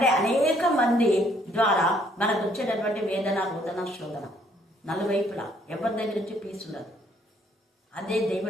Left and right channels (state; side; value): normal; both; correlation 0.65